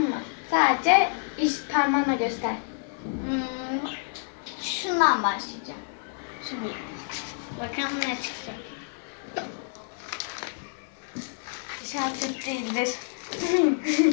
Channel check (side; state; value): right; silent; 59 dB below the other